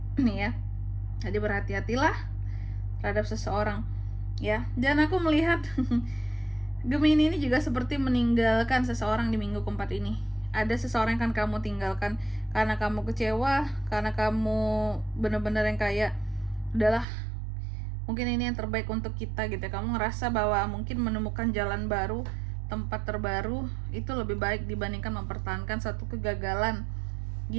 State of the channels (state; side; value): drops out; left; at 17.1 s